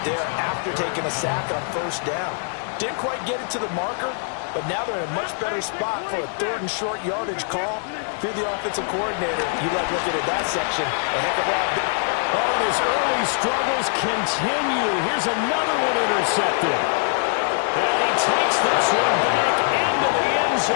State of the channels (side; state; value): right; silent; 57 dB below the other